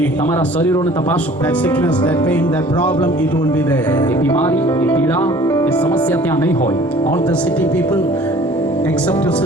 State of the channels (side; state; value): both; normal; correlation 0.51